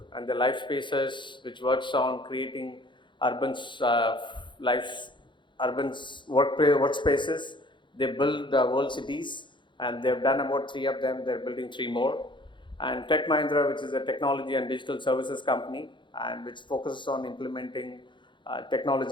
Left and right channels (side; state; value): right; late; 0.23 ms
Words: and the Life Spaces, which works on creating urban workspaces. They build world cities, and they've done about 3 of them. They're building 3 more. And Tech Mahindra, which is a technology and digital services company, and which focuses on implementing